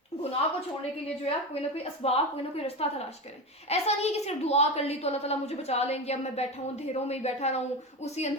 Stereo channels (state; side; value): normal; both; correlation 0.21